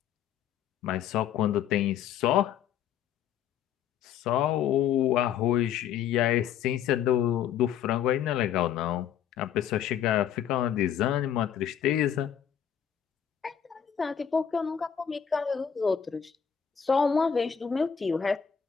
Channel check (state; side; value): quieter; right; 8.7 dB